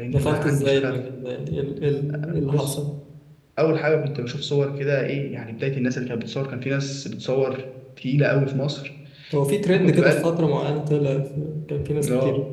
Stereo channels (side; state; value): both; identical; correlation 1.00